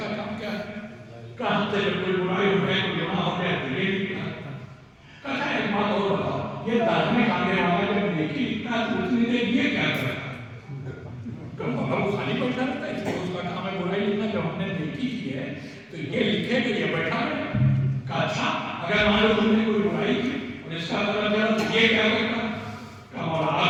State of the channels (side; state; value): both; identical; correlation 1.00